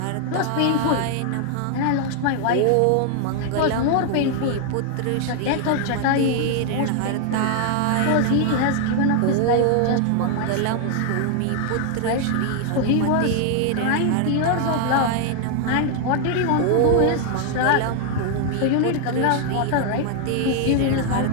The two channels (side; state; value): both; different; correlation 0.00